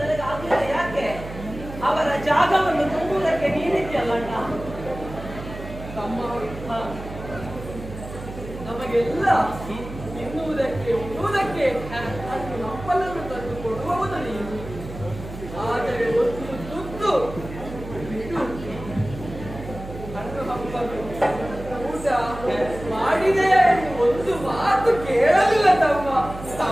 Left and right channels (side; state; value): right; noise; hum, 11 dB below the sound